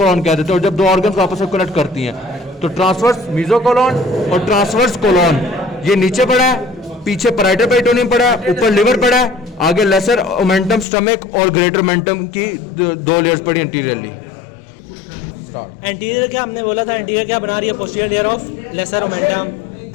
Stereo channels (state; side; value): drops out; right; at 10.9 s